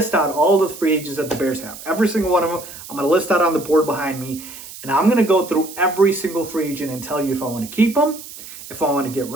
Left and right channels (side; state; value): right; noise; hiss, 14 dB below the sound